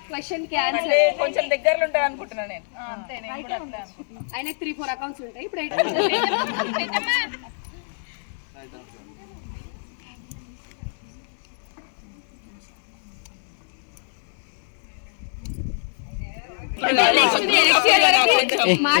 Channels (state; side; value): silent; right; digital silence